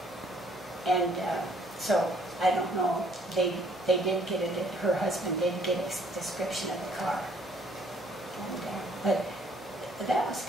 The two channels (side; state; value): both; normal; correlation 0.63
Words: And so I don't know, they did get it, her husband did get a description of the car. And, but that was